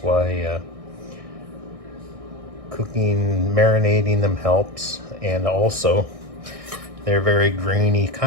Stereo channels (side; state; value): left; late; 1.6 ms